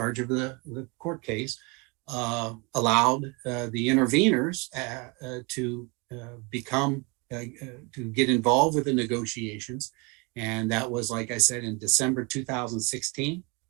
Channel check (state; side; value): quieter; left; 29.6 dB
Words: of the court case, allowed the interveners to get involved with the negotiations, and that was, like I said, in December 2016,